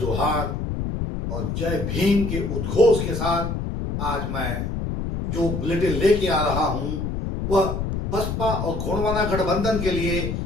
और जय भीम के उद्घोष के साथ आज मैं जो बुलेटिन लेके आ रहा हूं वह बसपा और गोंडवाना गठबंधन के लिए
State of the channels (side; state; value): left; noise; rumble, 3 dB below the sound